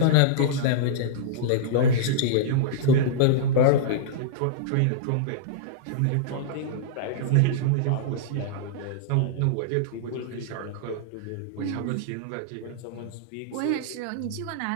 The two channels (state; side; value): different; both; correlation -0.02